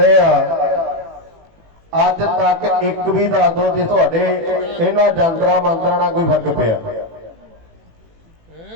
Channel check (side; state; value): left; late; 18 ms